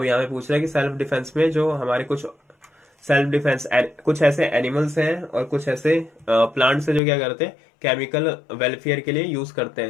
यहाँ पे पूछ रहा है कि सेल्फ डिफेंस में जो हमारे कुछ सेल्फ डिफेंस, कुछ ऐसे एनिमल्स हैं और कुछ ऐसे प्लांट्स हैं जो क्या करते हैं, केमिकल वेलफेयर के लिए यूज करते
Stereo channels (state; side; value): drops out; right; at 7.0 s